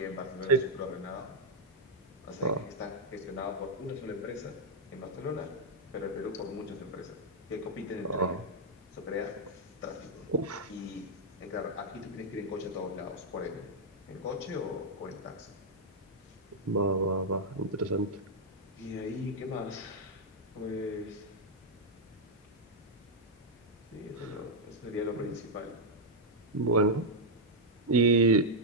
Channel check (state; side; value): normal; both; correlation -0.04